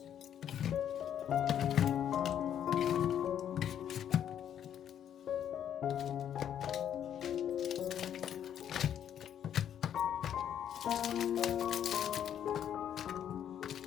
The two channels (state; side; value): quieter; right; 9.7 dB